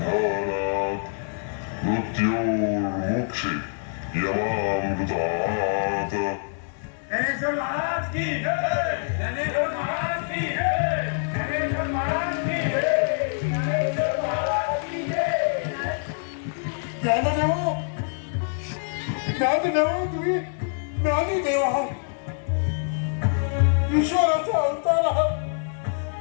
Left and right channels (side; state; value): right; silent; 62 dB below the other